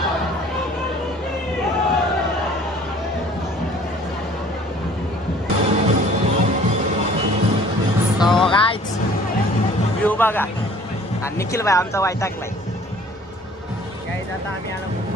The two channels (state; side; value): normal; both; correlation 0.52